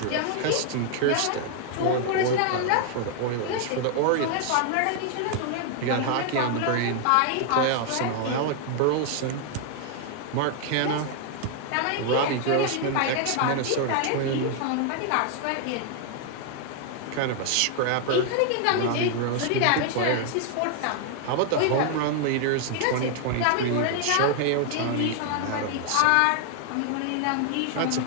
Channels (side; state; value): both; different; correlation 0.00